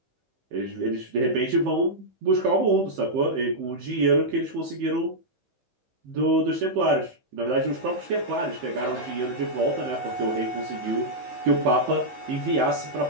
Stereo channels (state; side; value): late; left; 15 ms